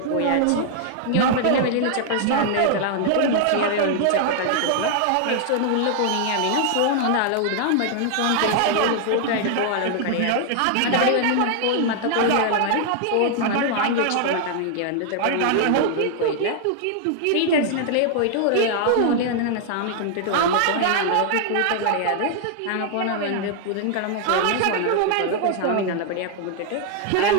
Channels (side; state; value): both; different; correlation 0.00